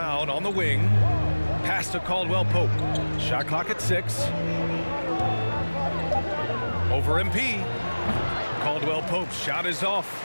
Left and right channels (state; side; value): inverted; both; correlation -1.00